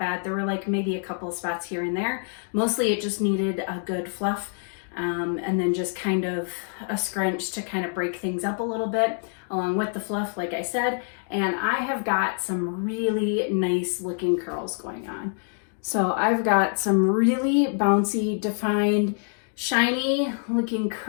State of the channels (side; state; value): right; silent; 56 dB below the other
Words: There were like maybe a couple of spots here and there. Mostly it just needed a good fluff, and then just kind of a scrunch to kind of break things up a little bit along with the fluff, like I said. And I have got some really nice looking curls going on. So I've got some really bouncy, defined, shiny looking